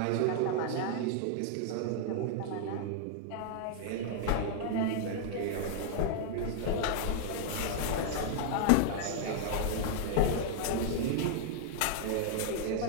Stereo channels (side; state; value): both; different; correlation -0.01